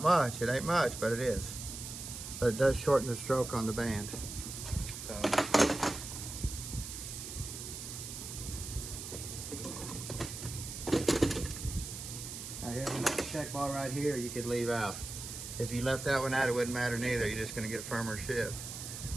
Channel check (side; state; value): right; noise; hiss, 8 dB below the sound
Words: much, it ain't much, but it is. But it does shorten the stroke on the band. So. Now here's another check ball right here you could leave out. If you left that one out, it wouldn't matter neither. You're just gonna get firmer ship.